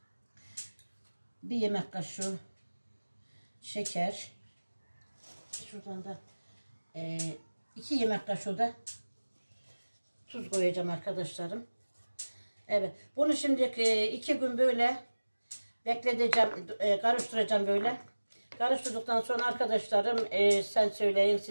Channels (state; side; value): inverted; both; correlation -1.00